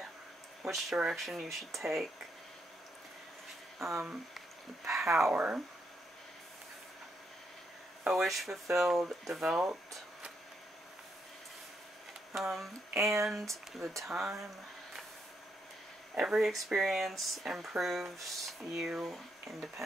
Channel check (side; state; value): both; normal; correlation 0.78